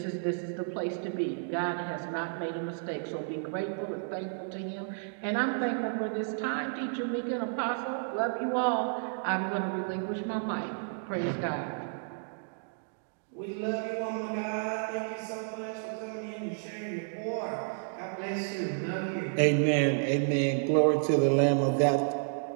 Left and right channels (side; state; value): left; silent; digital silence